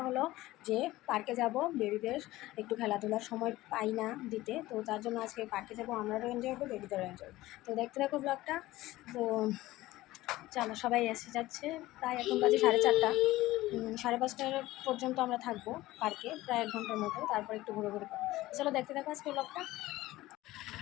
হলো যে পার্কে যাব, বেবিদের একটু খেলাধুলার সময় পাই না দিতে, তো তার জন্য আজকে পার্কে যাব। আমরাও এনজয় করবো, বেবিদেরও এনজয়। তো দেখতে থাকো ব্লগটা। তো চলো, সবাই এসে যাচ্ছে। প্রায় এখন বাজে 4:30, 5:30 পর্যন্ত আমরা থাকবো পার্কে, প্রায় 1 ঘন্টার মতো। তারপর একটু ঘুরে ঘুরে পাবো। চলো দেখতে থাকো আজকে ব্লগটা।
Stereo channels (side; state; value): right; quieter; 17.4 dB